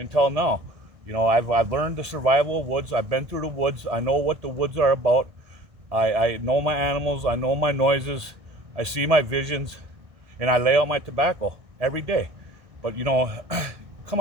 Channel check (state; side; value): late; left; 1.6 ms